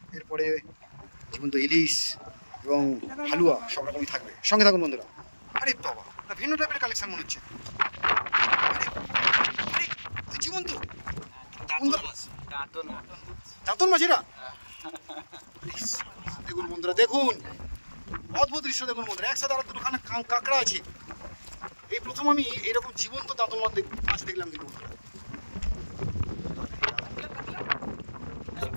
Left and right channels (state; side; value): inverted; both; correlation -1.00